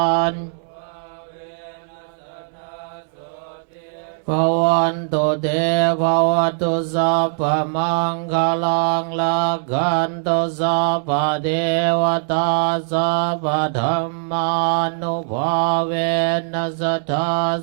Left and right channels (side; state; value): left; silent; digital silence